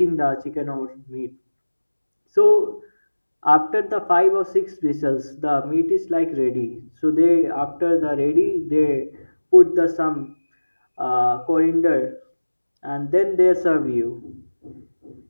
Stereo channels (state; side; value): inverted; both; correlation -1.00